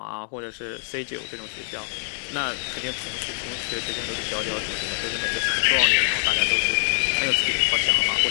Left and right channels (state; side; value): silent; right; digital silence